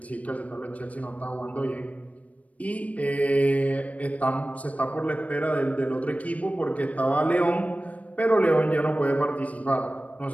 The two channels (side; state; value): right; late; 0.068 ms